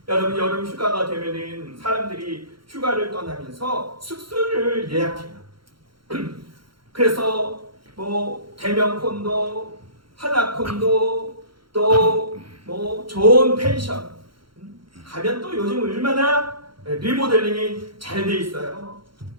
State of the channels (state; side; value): late; left; 0.73 ms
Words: 여러분 여름 휴가가 되면은 사람들이 휴가를 떠나면서 숙소를 예약해요. 그래서 대면 콘도, 하나 콘도, 또 좋은 펜션 가면 또 요즘 얼마나 리모델링이 잘 돼 있어요.